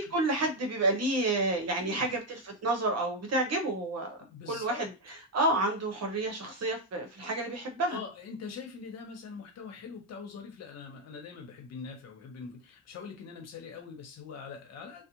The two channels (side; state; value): both; normal; correlation 0.03